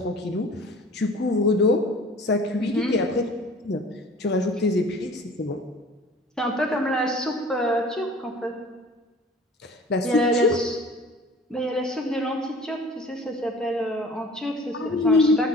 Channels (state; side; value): normal; both; correlation 0.46